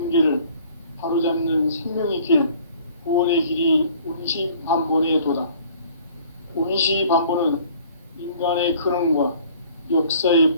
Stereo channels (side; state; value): both; inverted; correlation -0.53